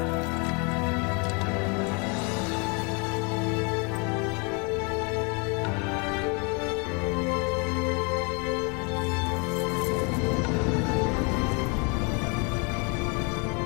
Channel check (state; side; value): quieter; right; 33.2 dB